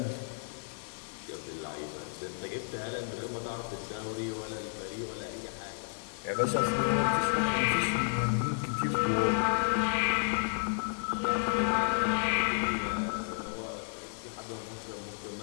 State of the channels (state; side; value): silent; right; digital silence